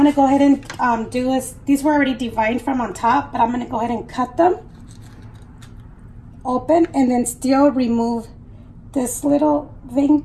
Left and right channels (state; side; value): identical; both; correlation 1.00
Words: go ahead and do is, these were already deveined from on top, but I'm gonna go ahead and cut them open and then still remove this little vein